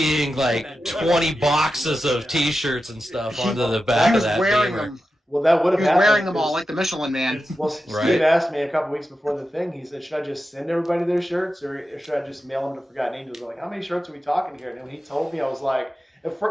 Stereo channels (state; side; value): normal; both; correlation 0.91